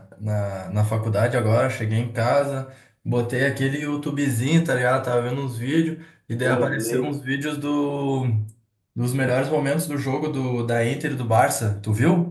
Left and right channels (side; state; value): both; identical; correlation 1.00